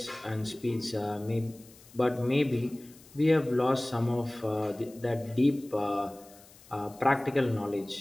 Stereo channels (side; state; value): left; noise; hiss, 24 dB below the sound